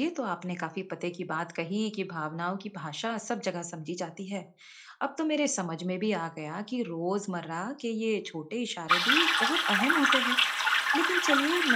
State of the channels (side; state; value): both; identical; correlation 1.00